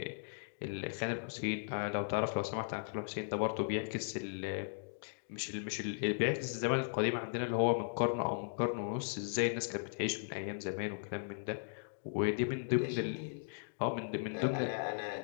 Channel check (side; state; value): right; silent; digital silence